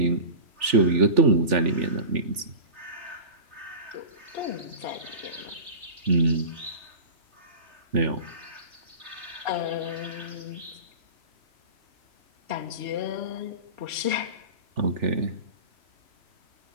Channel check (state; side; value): late; left; 3.4 ms